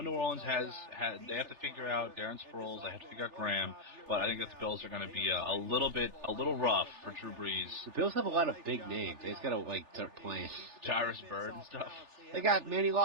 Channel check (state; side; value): late; left; 3.4 ms